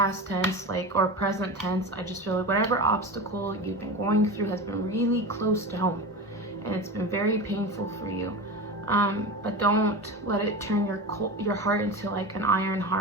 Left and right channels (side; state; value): both; normal; correlation 0.26